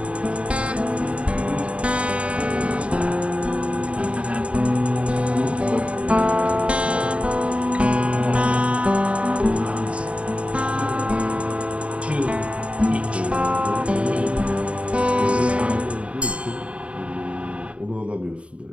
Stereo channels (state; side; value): late; left; 0.062 ms